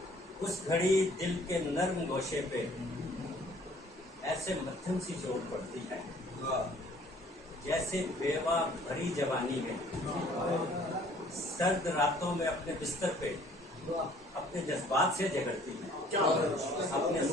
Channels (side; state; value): both; normal; correlation 0.56